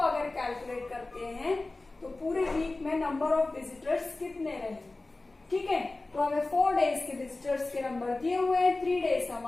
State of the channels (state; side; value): quieter; right; 3.1 dB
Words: कैलकुलेट करते हैं तो पूरे वीक में नंबर ऑफ विजिटर्स कितने रहे, ठीक है। तो हमें 4 डेज के विजिटर्स के नंबर दिए हुए हैं, 3 डेज